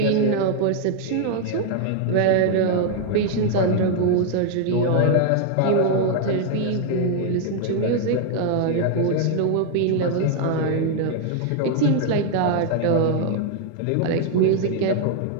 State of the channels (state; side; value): different; both; correlation 0.00